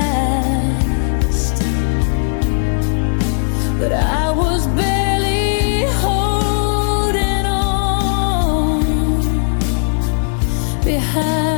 but I was barely holding on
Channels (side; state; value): right; silent; digital silence